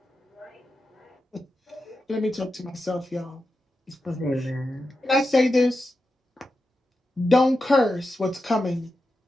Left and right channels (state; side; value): normal; both; correlation 0.90